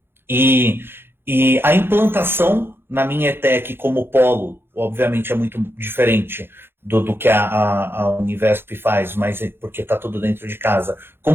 E a implantação na minha ETEC como polo, obviamente é muito diferente do que a Univesp faz, mas porque está tudo dentro de casa.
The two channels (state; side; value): late; left; 0.11 ms